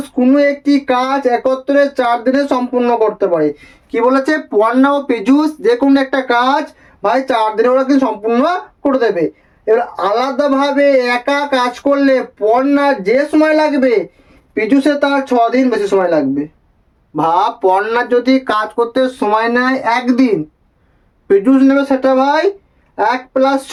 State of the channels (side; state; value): both; identical; correlation 1.00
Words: কোনো একটি কাজ একত্রে 4 দিনে সম্পূর্ণ করতে পারে। কি বলেছে পর্ণা ও পীযূষ যে কোনো একটা কাজ ভাই 4 দিনে ওরা কিন্তু সম্পূর্ণ করে দেবে। এবার আলাদাভাবে একা কাজ করলে পর্ণার যে সময় লাগবে পীযূষের তার 6 দিন বেশি সময় লাগবে। ভাব পর্ণার যদি কাজ করতে সময় নেয় 1 দিন, পীযূষ নেবে সেটা ভাই 1 +